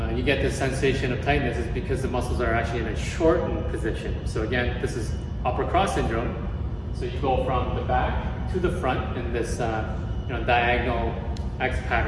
you get this sensation of tightness is because the muscles are actually in a shortened position. So again, this is upper cross syndrome. So you go from the back to the front in this diagonal X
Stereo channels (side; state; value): both; identical; correlation 1.00